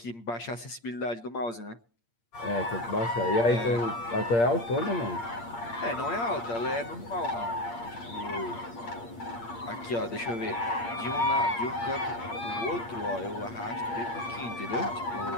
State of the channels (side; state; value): right; late; 8.6 ms